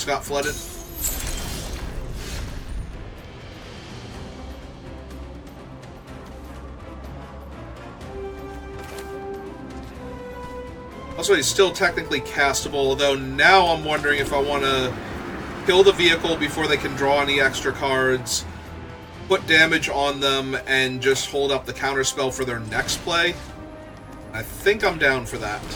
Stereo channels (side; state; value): both; identical; correlation 1.00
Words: got flooded. Also, he's still technically castable, although now I'm wondering if I want to kill the vehicle before they can draw any extra cards, put damage on them, and just hold up the counterspell for their next play. I think I'm down for that.